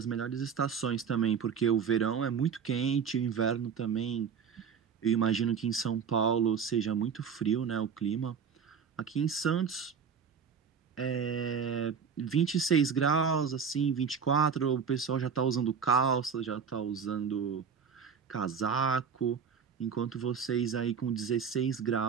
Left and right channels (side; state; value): left; quieter; 6.7 dB